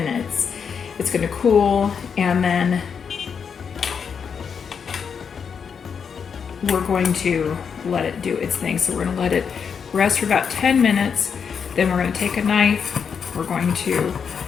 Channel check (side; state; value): right; quieter; 6.6 dB